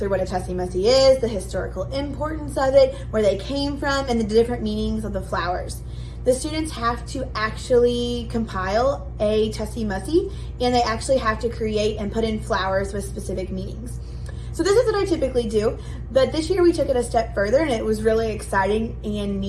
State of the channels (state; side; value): identical; both; correlation 1.00